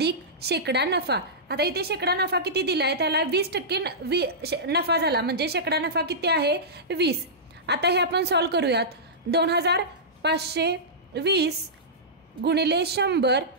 शेकडा नफा। आता इथे शेकडा नफा किती दिलाय, त्याला 20% नफा झाला, म्हणजे शेकडा नफा किती आहे, 20। आता हे आपण सॉल्व्ह करूयात, 2520 गुणिले 100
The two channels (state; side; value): normal; both; correlation -0.15